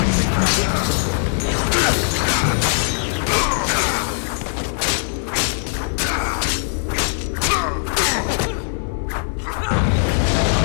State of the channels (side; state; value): right; silent; digital silence